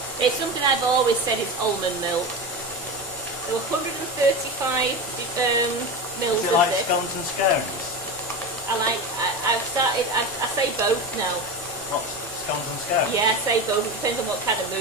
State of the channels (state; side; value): normal; both; correlation 0.23